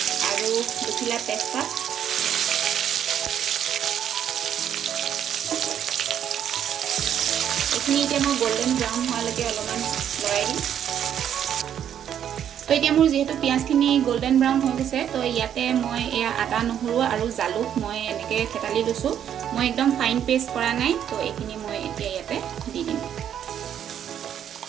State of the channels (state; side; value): quieter; left; 9.5 dB